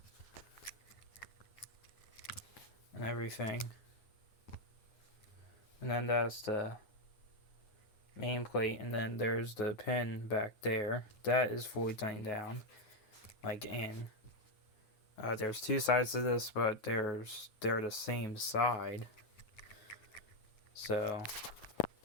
And everything. And then that's the main plate, and then there's the pin back there. That is fully tightened down, like in. There's two sides to this, but they're the same side. So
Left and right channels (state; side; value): late; right; 9.5 ms